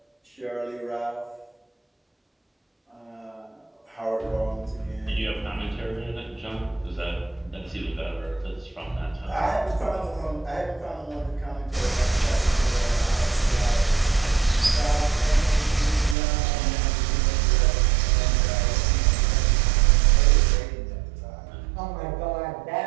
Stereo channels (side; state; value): left; drops out; at 16.2 s